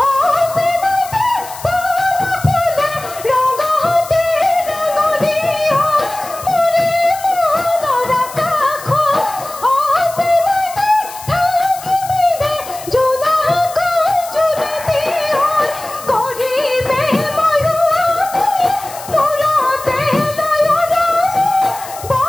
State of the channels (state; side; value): noise; left; hiss, 15 dB below the sound